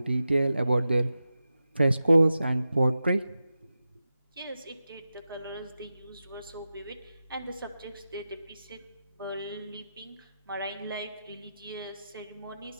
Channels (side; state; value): both; inverted; correlation -0.92